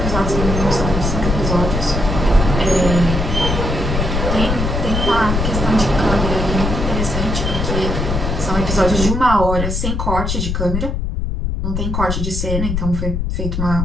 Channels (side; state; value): left; noise; rumble, 1 dB below the sound